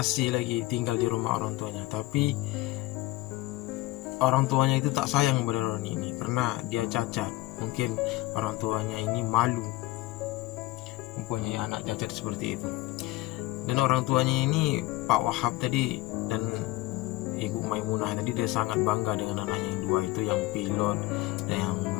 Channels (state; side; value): quieter; right; 19.2 dB